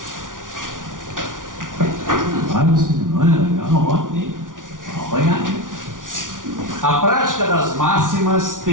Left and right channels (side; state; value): left; late; 0.88 ms